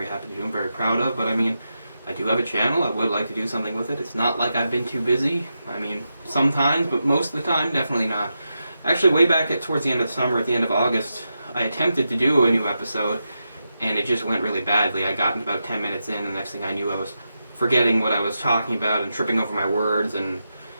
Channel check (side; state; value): both; inverted; correlation -0.87